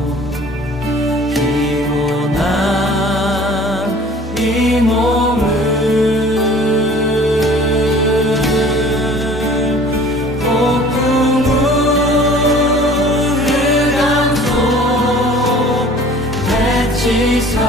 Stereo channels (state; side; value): normal; both; correlation 0.49